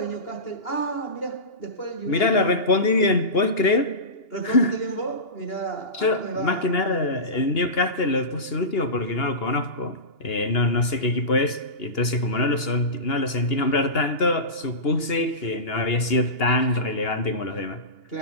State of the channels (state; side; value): late; right; 2.8 ms